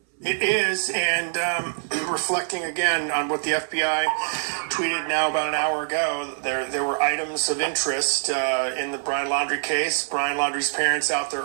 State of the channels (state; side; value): silent; left; 62 dB below the other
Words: It is, and reflecting again on what the FBI tweeted now about an hour ago, there were items of interest in the Brian Laundrie case. Brian Laundrie's parents out there